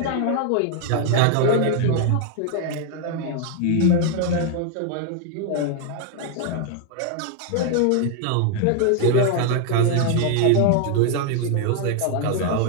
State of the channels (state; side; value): different; both; correlation 0.00